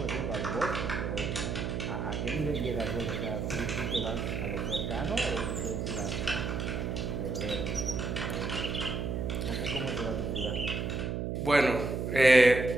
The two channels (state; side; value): noise; right; hum, 2 dB below the sound